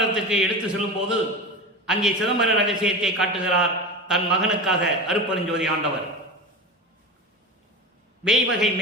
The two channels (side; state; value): both; normal; correlation 0.27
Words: எடுத்து செல்லும்போது அங்கே சிதம்பர ரகசியத்தை காட்டுகிறார் தன் மகனுக்காக அருட்பெருஞ்சோதி ஆண்டவர். வேய்வகை